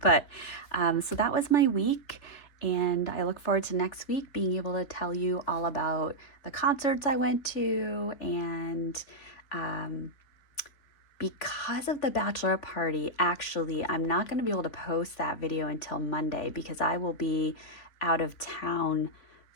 But so that was my week. And I look forward to next week being able to tell you all about the concerts I went to. And because of the bachelor party, actually, I'm not going to be able to post that video until Monday because I will be out of town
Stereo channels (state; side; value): late; right; 3.4 ms